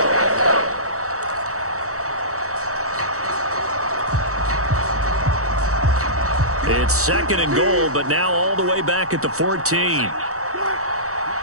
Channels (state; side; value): late; left; 0.65 ms